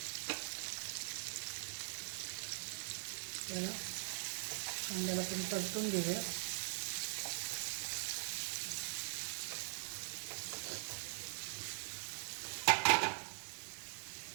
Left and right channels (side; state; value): left; silent; digital silence